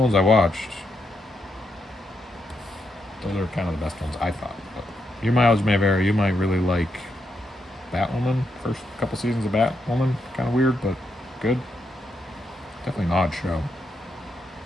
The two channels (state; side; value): normal; both; correlation 0.81